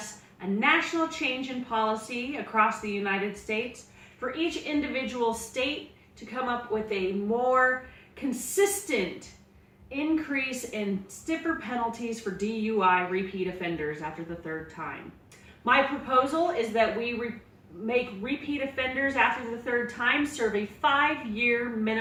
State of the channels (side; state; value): both; identical; correlation 1.00